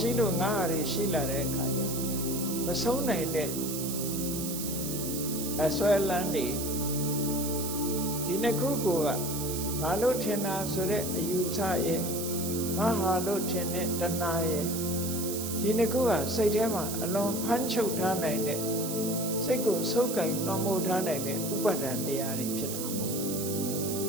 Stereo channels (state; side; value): noise; right; hiss, 5 dB below the sound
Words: ှိလို့ငါဟာတွေရှိလာတဲ့အခါကျမဆုံးနိုင်တဲ့အစွဲလန်းနေဒီနှစ်ခုကငါလို့ထင်တာဆိုတဲ့အယူဆရဲ့ငါဟာလို့ထင်တဲ့တဏှာရဲ့ဒီနှစ်ခုကစိတ်ထဲမှာအလွန်ဖမ်းချုပ်ထားနိုင်တဲ့စိတ်ကိုဆုပ်ကိုင်နှောမိုးထားနိုင်တဲ့ဥပါဒံတရားတွေဖြစ်တာပေါ့